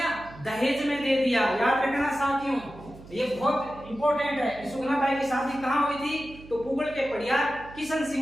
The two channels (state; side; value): noise; right; hum, 18 dB below the sound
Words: दहेज में दे दिया। याद रखना साथियों, ये बहुत इंपॉर्टेंट है। सुगना बाई की शादी कहाँ हुई थी? तो पुगल के परियार किशन